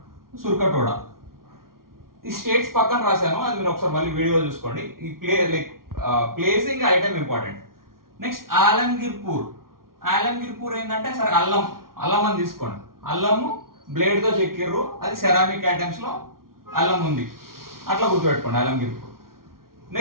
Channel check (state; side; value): late; left; 0.93 ms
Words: సుర్కటోడ. ఈ స్టేట్స్ పక్కన రాశాను, అది మీరు ఒకసారి మళ్ళీ వీడియో చూసుకోండి. ఈ ప్లేసింగ్ ఐటమ్ ఇంపార్టెంట్. నెక్స్ట్ ఆలంగిర్పూర్. ఆలంగిర్పూర్ ఏంటంటే సరే అల్లం అని తీసుకోండి. అల్లము బ్లేడ్తో చెక్కిర్రు, అది సెరామిక్ ఐటమ్స్ లో అల్లం ఉంది, అట్లా గుర్తుపెట్టుకోండి ఆలంగిర్పూర్.